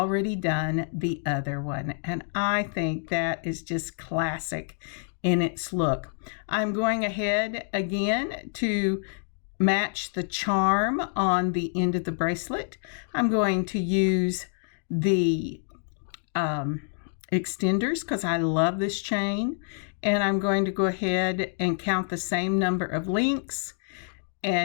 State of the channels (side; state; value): right; silent; digital silence